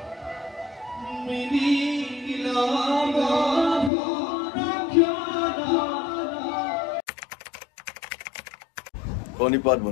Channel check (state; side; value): drops out; right; at 3.9 s